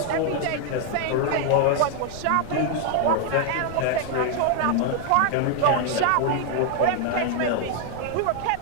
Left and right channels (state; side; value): different; both; correlation 0.00